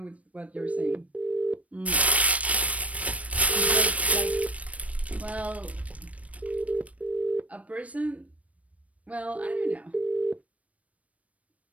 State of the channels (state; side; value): late; left; 0.066 ms